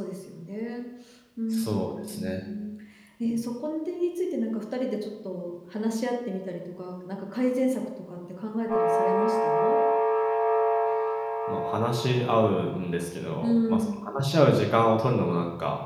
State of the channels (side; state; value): both; identical; correlation 1.00